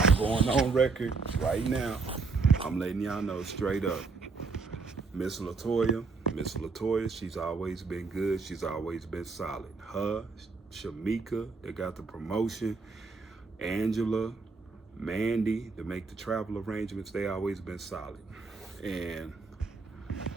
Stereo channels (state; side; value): quieter; left; 4.3 dB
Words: going on record right now. I'm letting y'all know straight up. Miss Latoya, she's always been good. She's always been solid. Her, Shamika, they got the promotion. Angela, Mandy, to make the travel arrangements, they always been solid. And